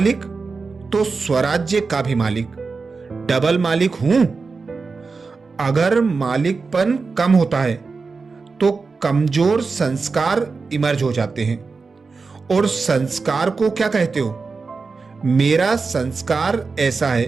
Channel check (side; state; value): left; quieter; 4.4 dB